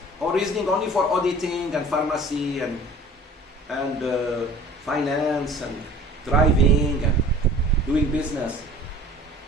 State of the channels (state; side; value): normal; both; correlation 0.46